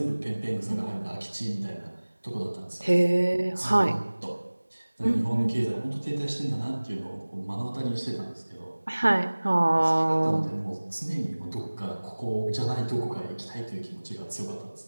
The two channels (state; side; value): inverted; both; correlation -1.00